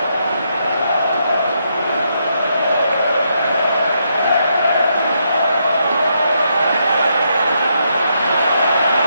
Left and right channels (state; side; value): inverted; both; correlation -0.78